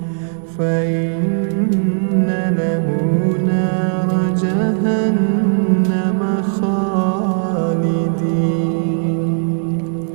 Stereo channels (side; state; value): left; silent; 60 dB below the other